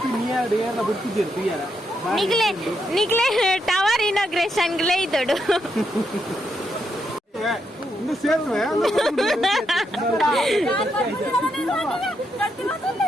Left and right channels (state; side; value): normal; both; correlation 0.80